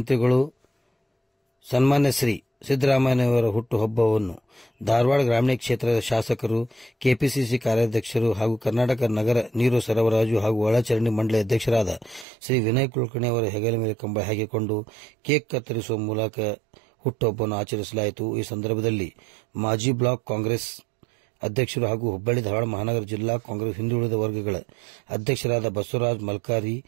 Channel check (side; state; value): left; drops out; at 12.2 s